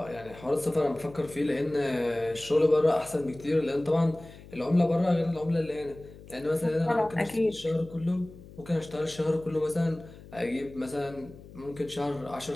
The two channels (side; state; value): left; noise; hum, 18 dB below the sound